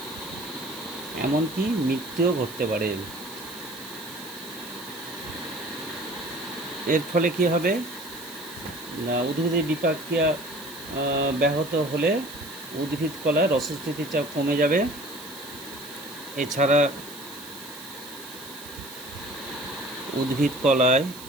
এমনকি মৃত্যুও ঘটতে পারে। এর ফলে কি হবে না, উদ্ভিদের বিপাক ক্রিয়া ব্যাহত হলে উদ্ভিদ কলায় রসস্থিতির চাপ কমে যাবে। এছাড়া উদ্ভিদ কলায়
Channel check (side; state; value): right; noise; hiss, 15 dB below the sound